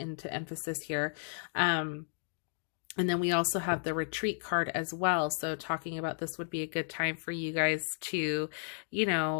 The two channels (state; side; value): silent; right; digital silence